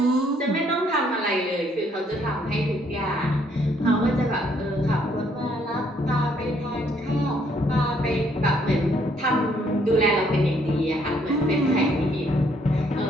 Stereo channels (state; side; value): normal; both; correlation 0.68